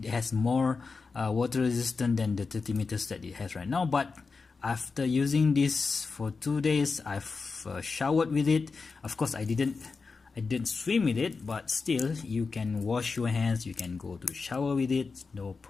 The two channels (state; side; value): quieter; right; 4.5 dB